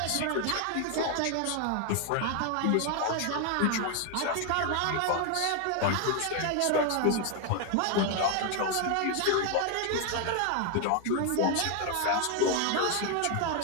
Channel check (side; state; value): both; different; correlation 0.01